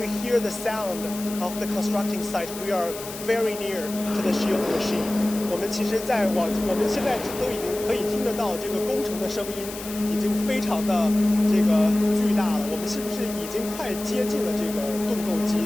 hear the sound of the constructing site, we are very near to the shield machine. 我们其实我们现在都已经可以听得到这个工程的声音，已经非常的这个巨大了。我们是不是已经快接近了这个盾构机，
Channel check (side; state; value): left; noise; hiss, 12 dB below the sound